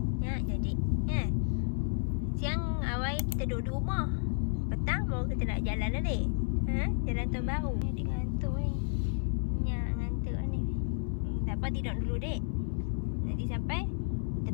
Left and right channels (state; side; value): silent; right; 56 dB below the other